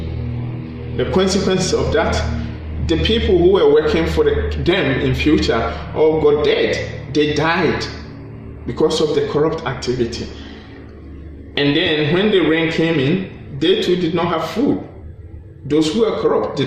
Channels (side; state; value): both; identical; correlation 1.00